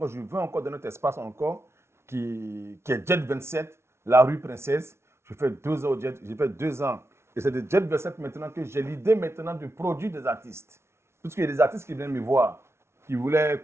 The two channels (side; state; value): left; late; 0.13 ms